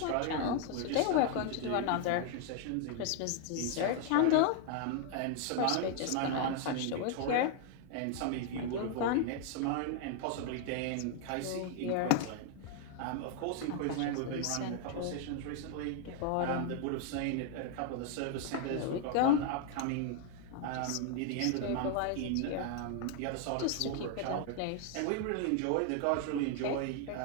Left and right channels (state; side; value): different; both; correlation 0.00